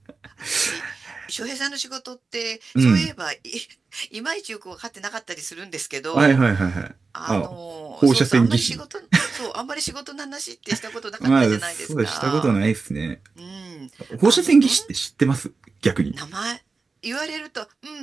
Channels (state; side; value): quieter; left; 4.3 dB